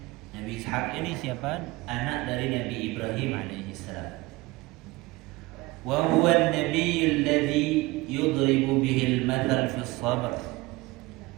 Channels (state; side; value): quieter; left; 21.5 dB